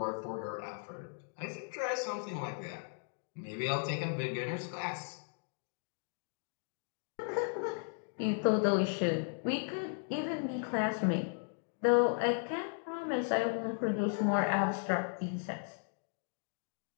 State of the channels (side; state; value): right; silent; 54 dB below the other